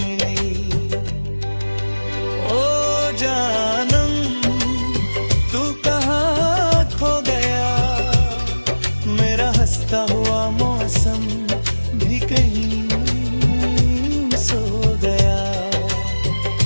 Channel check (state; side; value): inverted; both; correlation -1.00